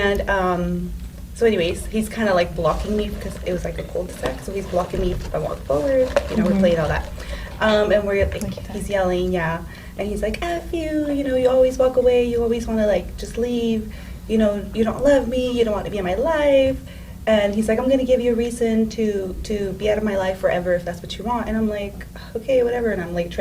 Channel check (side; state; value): both; identical; correlation 1.00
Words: so anyways, he's kind of like blocking me because it was like a cul-de-sac. So he's blocking me if I walk forward. You know, we're playing all that. And we're like, he's yelling, yeah. And he's like, F you, you know, you always walk away. You always want to like just leave. You know, you don't love me. You don't want to be in my life. And he's like, I'm going to give you a reason to be out of my life forever if that's what you want. And I'm like, okay, whatever. And I'm like